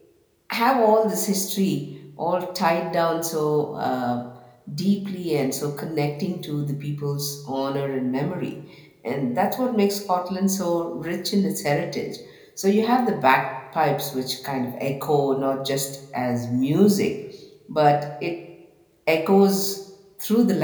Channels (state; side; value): identical; both; correlation 1.00